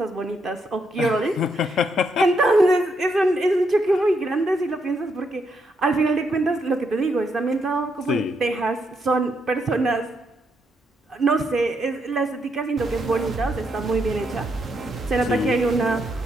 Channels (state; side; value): normal; both; correlation 0.78